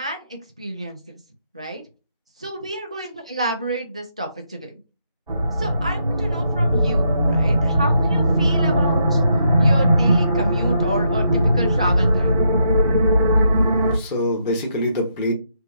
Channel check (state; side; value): inverted; both; correlation -0.77